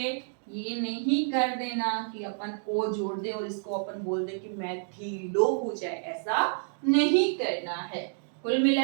ये नहीं कर देना कि अपन ओ जोड़ दे और इसको अपन बोल दे कि मैथिलो हो जाए, ऐसा नहीं करना है। कुल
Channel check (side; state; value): left; silent; digital silence